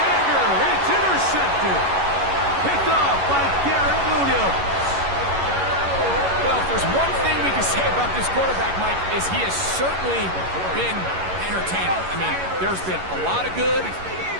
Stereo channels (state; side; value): late; left; 11 ms